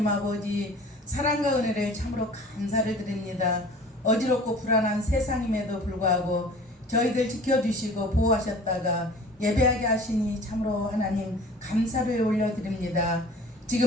아버지, 사랑과 은혜를 참으로 감사를 드립니다. 어지럽고 불안한 세상임에도 불구하고 저희들 지켜주시고 보호하셨다가 예배하게 하시니 참으로 하나님 감사를 올려드립니다.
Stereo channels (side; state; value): both; normal; correlation 0.45